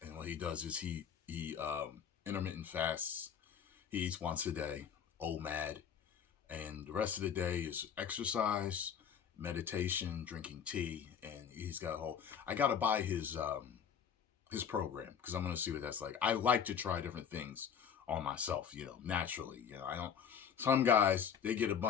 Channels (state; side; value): quieter; right; 7.7 dB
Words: what he does is he intermittent fasts. He eats once a day, OMAD. And the rest of the day is exercise, meditation, drinking tea. And he's got I got to buy his program because I'm going to see what that's like. I like to try different things on myself, naturally. Some guys, they get a